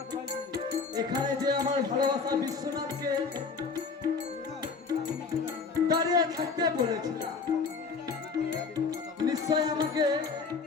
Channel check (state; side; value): quieter; right; 4.9 dB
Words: এখানে যে আমার ভালোবাসা বিশ্বনাথকে দাঁড়িয়ে থাকতে বলেছিলাম, নিশ্চয় আমাকে